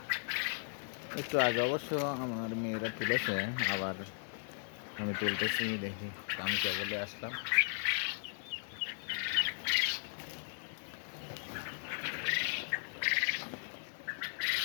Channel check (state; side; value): silent; right; digital silence